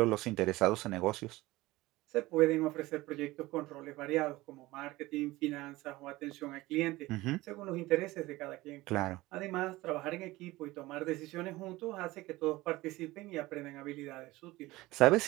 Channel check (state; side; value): quieter; left; 19.2 dB